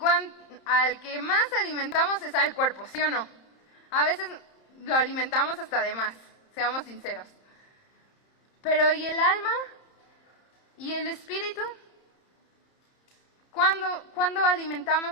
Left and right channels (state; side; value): late; right; 30 ms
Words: al que más alimentamos es al cuerpo, ¿sí o no? A veces lo alimentamos hasta de más, seamos sinceros. Pero ¿y el alma? ¿Y el espíritu? ¿Cuándo